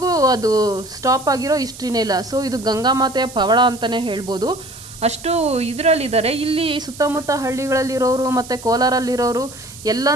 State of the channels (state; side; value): noise; right; hiss, 16 dB below the sound